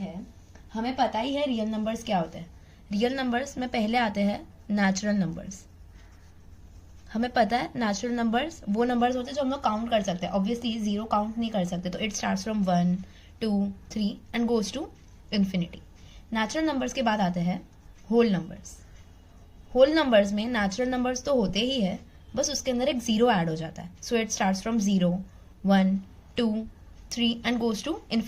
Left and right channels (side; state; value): both; identical; correlation 1.00